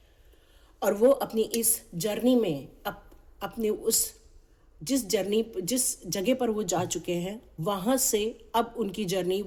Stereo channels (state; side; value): identical; both; correlation 1.00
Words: और वो अपनी इस जर्नी में अपने उस जिस जगह पर वो जा चुके हैं, वहाँ से अब उनकी जर्नी